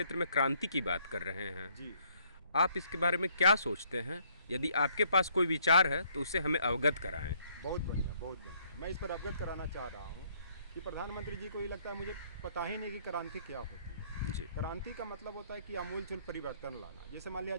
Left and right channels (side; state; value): both; inverted; correlation -0.66